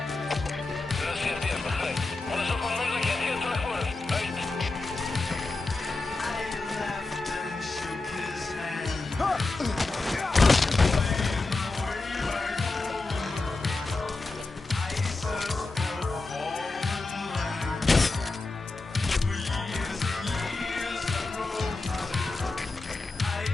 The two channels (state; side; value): quieter; right; 3.4 dB